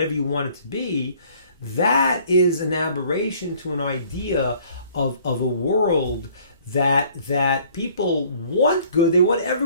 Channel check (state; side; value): inverted; both; correlation -0.57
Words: you want it to be, that is an aberration to an idea of a world that people want good, they want